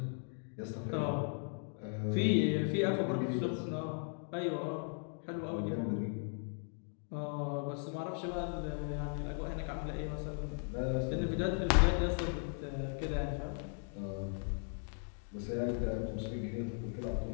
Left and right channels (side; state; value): right; silent; 53 dB below the other